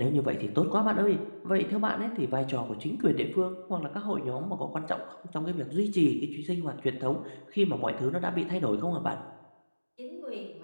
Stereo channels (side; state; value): both; inverted; correlation -1.00